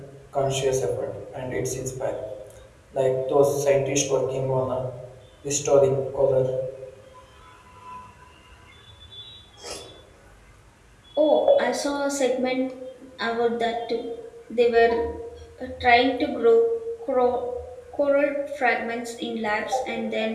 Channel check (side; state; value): both; identical; correlation 1.00